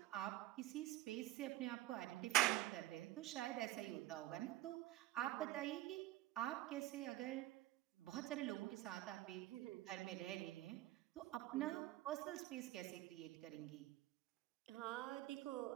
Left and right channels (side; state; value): left; quieter; 15.8 dB